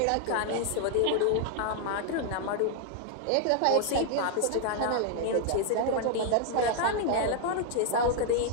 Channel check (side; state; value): both; different; correlation 0.00